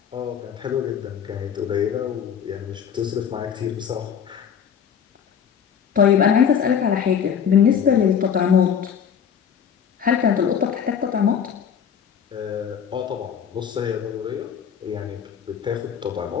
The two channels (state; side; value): quieter; right; 7.9 dB